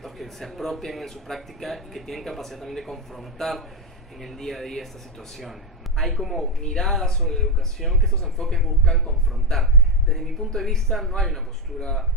que se apropian en su práctica y que tienen capacidad también de confrontar en el día a día estas situaciones. Hay como miradas sobre la educación que estos enfoques buscan confrontar. Desde mi punto de vista no hay una postura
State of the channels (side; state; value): both; normal; correlation 0.06